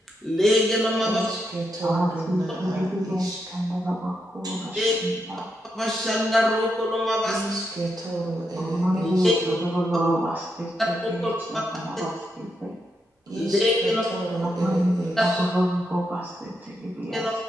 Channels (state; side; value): normal; both; correlation 0.82